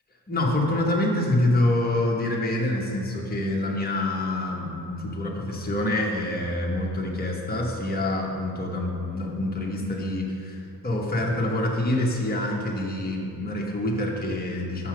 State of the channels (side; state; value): both; normal; correlation 0.54